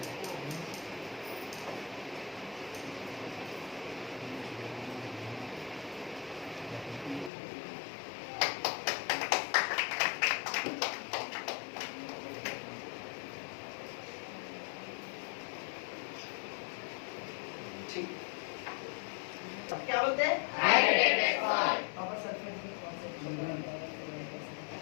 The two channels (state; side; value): drops out; right; at 7.3 s